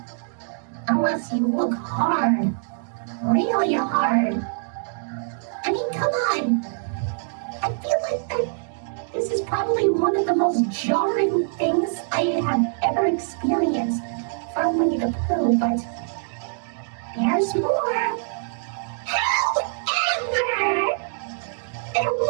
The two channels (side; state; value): left; silent; 63 dB below the other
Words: Unless you look hard. Really hard. I mean, come on. I feel like that this is probably one of the most jarring things I have ever experienced from Winnie the Pooh, but there's more. However, there